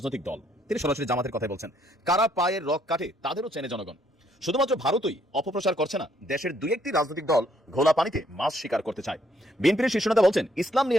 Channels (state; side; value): normal; both; correlation 0.69